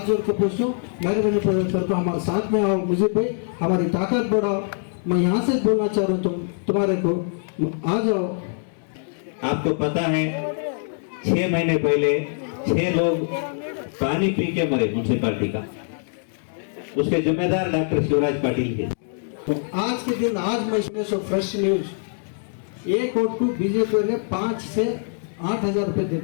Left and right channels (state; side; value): silent; right; digital silence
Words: जोड़ के पूछूं, मेहरबानी करके हमारे साथ में आओ, मुझे भाई हमारी ताकत बढ़ाओ। मैं यहाँ से बोलना चाह रहा हूँ तुम्हारे को, आ जाओ। आपको पता है 6 महीने पहले 6 लोग पानी पी के मरे म्यूनसिपालिटी का, उसके जिम्मेदार डॉक्टर शिवराज पाटिल थे। तो आज के दिन आज मैं इसमें सो फ्रेश न्यूज, एक वोट को बीजेपी ने 5 से 8 हजार रुपए